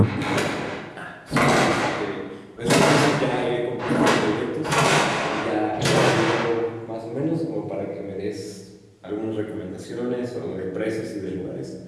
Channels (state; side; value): identical; both; correlation 1.00